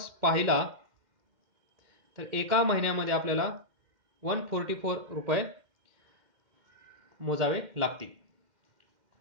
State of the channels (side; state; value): left; late; 2.1 ms